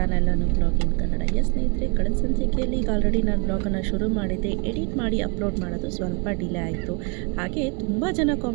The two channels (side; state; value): left; quieter; 32.9 dB